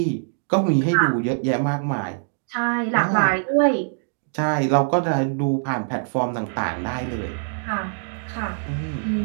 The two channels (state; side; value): silent; left; digital silence